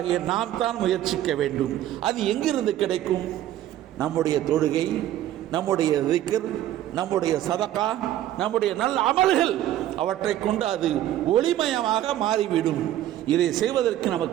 நாம் தான் முயற்சிக்க வேண்டும். அது எங்கிருந்து கிடைக்கும்? நம்முடைய தொழுகை, நம்முடைய திக்ர், நம்முடைய சதகா, நம்முடைய நல்ல அமல்கள், அவற்றை கொண்டு அது ஒளிமயமாக மாறிவிடும். இதை செய்வதற்கு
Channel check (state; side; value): quieter; left; 12.9 dB